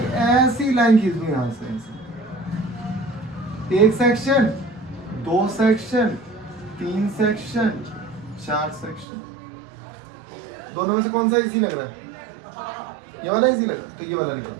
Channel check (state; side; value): drops out; left; at 9.1 s